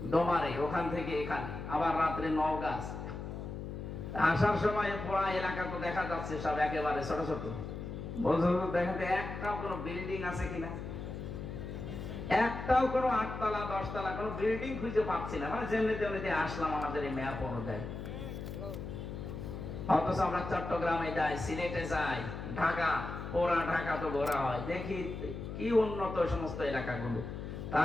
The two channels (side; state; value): left; noise; hum, 7 dB below the sound